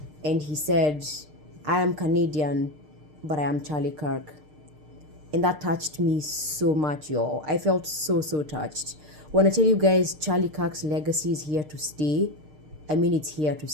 and he said, I am Canadian, but I am Charlie Kirk. And that touched me so much, y'all. I felt so touched. When I tell you guys Charlie Kirk's legacy is here to stay, I mean it's here to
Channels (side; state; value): left; late; 6.6 ms